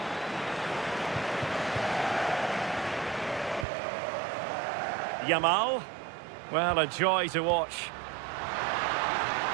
Yamal. Well, a joy to watch.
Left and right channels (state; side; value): drops out; left; at 3.7 s